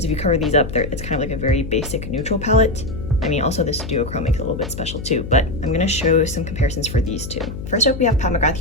if you cover these up, it's kind of like a very basic neutral palette. I mean, also this duochrome makes it a little bit special too, but I'm gonna show some comparisons for these two. First up, we have Pat McGrath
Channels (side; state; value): left; noise; hum, 9 dB below the sound